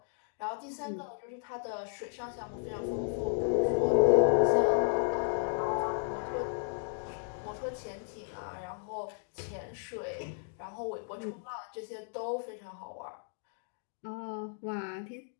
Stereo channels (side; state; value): right; silent; digital silence